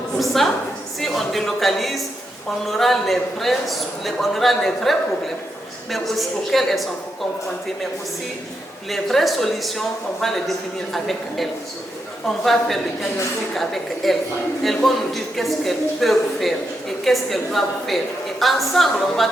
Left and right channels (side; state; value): both; normal; correlation 0.83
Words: pour ça, si on délocalise, on aura les vrais problèmes, mais aussi auxquels elles sont confrontées, mais aussi les vraies solutions, on va les définir avec elles. On va faire le diagnostic avec elles. Elles vont nous dire qu'est-ce qu'elles peuvent faire et qu'est-ce qu'elles doivent faire. Et ensemble, on va